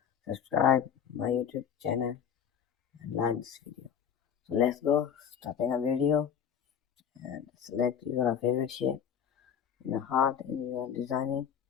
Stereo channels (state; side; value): quieter; right; 8.2 dB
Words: subscribe my YouTube channel and like this video. So let's go starting a video and select your favorite shape in the heart in your designing.